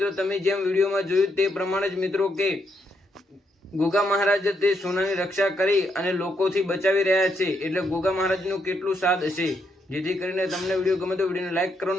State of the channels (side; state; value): both; normal; correlation 0.77